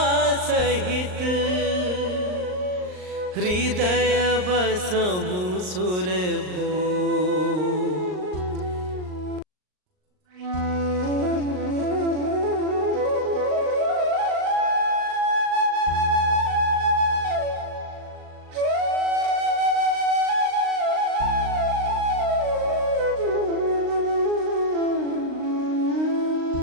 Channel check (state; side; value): late; left; 39 ms